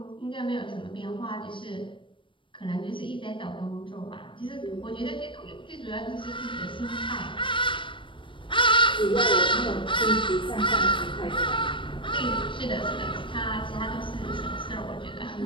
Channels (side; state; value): right; late; 0.24 ms